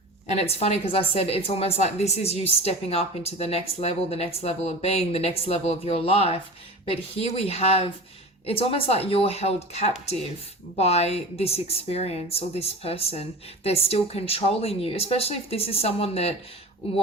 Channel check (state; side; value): normal; both; correlation 0.33